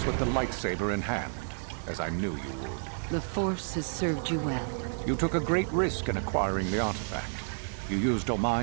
with the lightsaber in hand, as I knew you would. The Force has served you well. You took a great risk in acquiring the artifact. You used your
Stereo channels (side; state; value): left; silent; digital silence